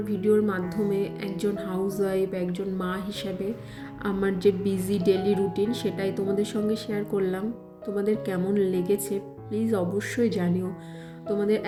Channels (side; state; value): both; identical; correlation 1.00